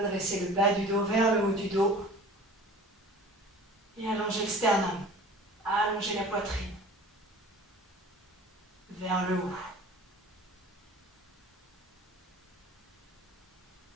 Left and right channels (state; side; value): normal; both; correlation 0.43